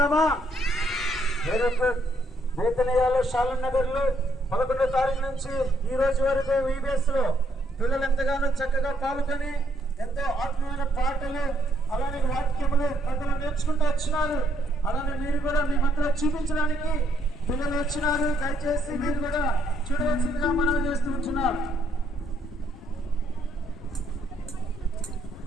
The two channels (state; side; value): normal; both; correlation 0.71